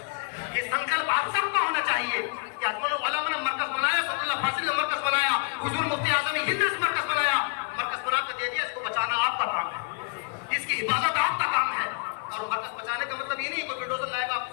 ये संकल्प आप सबका होना चाहिए कि अजमलुल उलमा ने मरकज बनाया, सल्लल्लाहु फाजिल ने मरकज बनाया, हुजूर मुफ्ती आज़म हिंद ने मरकज बनाया, मरकज बना कर दे दिया, इसको बचाना आपका काम है, इसकी हिफाजत आपका काम है। और मरकज बचाने का मतलब ये नहीं कोई बुलडोजर लाएगा आप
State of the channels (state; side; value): quieter; right; 35.6 dB